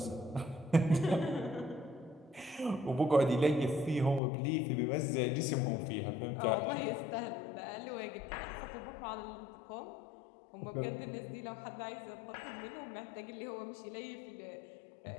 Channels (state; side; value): drops out; right; at 4.2 s